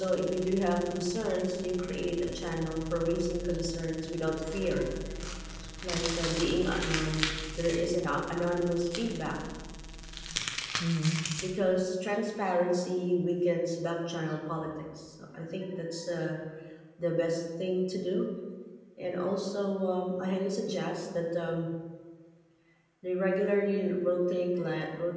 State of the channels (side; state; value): both; identical; correlation 1.00